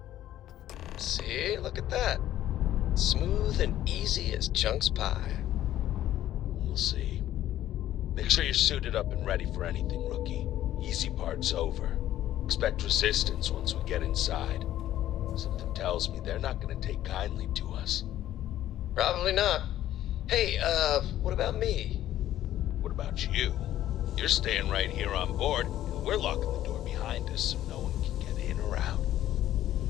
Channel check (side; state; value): right; quieter; 12.8 dB